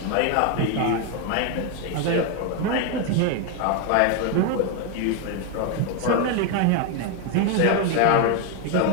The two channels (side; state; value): both; different; correlation 0.01